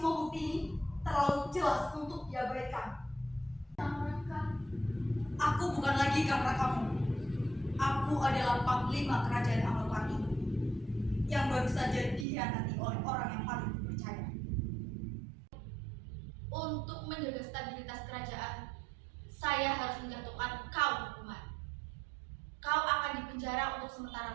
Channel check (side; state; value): left; drops out; at 12.2 s